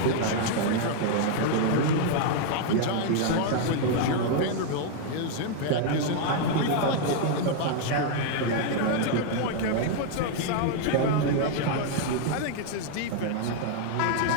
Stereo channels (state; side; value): different; both; correlation 0.00